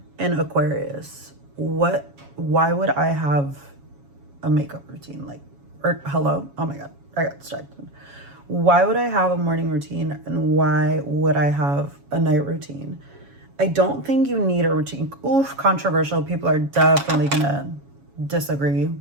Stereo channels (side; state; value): left; late; 7.2 ms